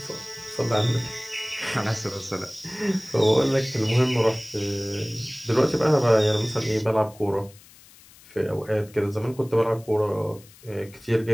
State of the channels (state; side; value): noise; left; hiss, 24 dB below the sound